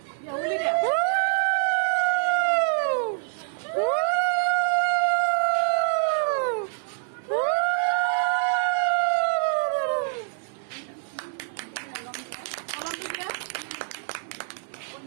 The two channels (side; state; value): left; silent; 56 dB below the other